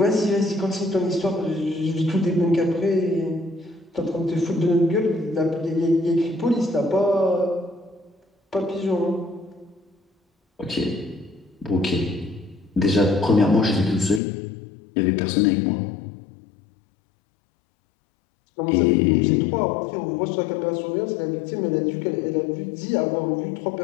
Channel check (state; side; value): drops out; right; at 14.2 s